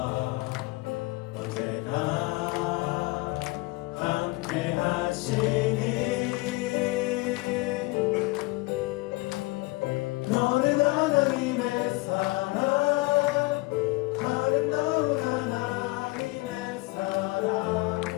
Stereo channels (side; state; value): right; quieter; 23.0 dB